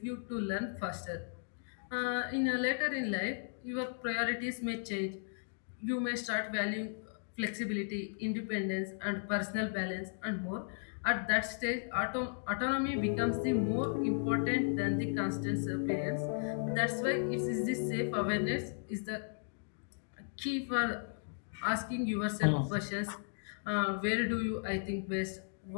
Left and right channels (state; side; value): silent; right; digital silence